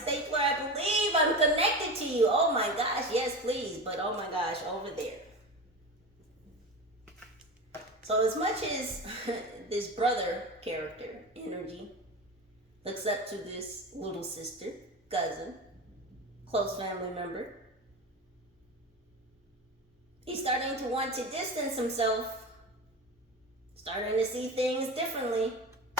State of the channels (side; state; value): both; normal; correlation 0.27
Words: I believe I'm connected to you. Oh my gosh, yes, please. But oh my gosh, over there. So as much as this brother character, energy, looks up to this little sister, cousin, close family member, he's starting to want to distance himself, starting to see things differently.